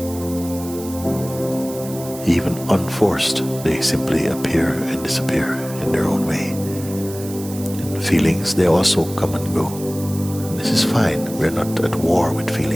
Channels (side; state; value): right; noise; hiss, 14 dB below the sound